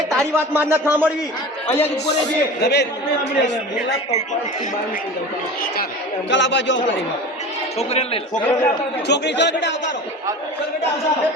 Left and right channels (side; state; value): both; normal; correlation 0.34